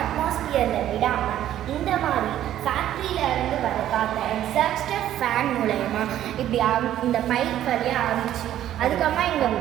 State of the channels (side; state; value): left; quieter; 12.0 dB